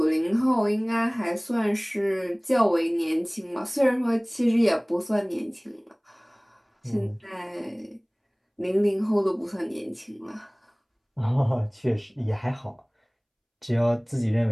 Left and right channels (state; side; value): identical; both; correlation 1.00